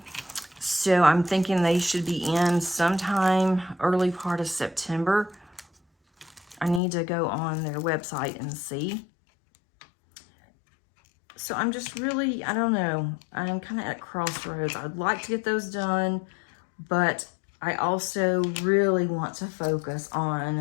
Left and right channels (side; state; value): right; drops out; at 6.8 s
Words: So I'm thinking they should be in sometime early part of September. I need to go on their website and see. So I'm just really, I don't know, I'm kind of at crossroads. I'd like to get those done, but I also really want to focus